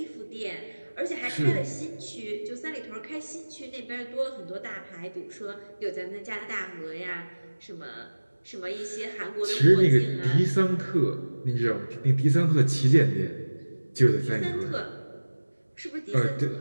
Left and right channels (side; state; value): both; inverted; correlation -1.00